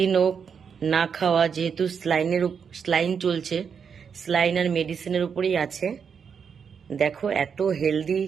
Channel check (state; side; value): quieter; left; 6.7 dB